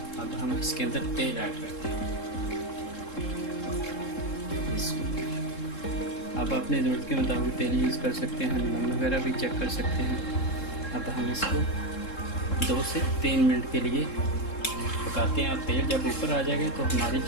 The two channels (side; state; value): right; late; 3.7 ms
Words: अब हम इसके अंदर तेल ऐड करते हैं। अब अपने ज़रूरत के मुताबिक तेल यूज़ कर सकते हैं, नमक वगैरह भी चेक कर सकते हैं। अब हम इसको 2 से 3 मिनट के लिए पकाते हैं। और तेल जब ऊपर आ जाएगा तो हमारी